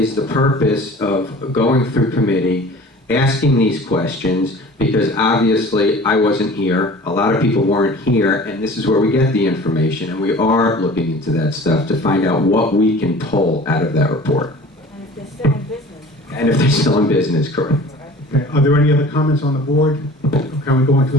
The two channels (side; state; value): both; normal; correlation 0.44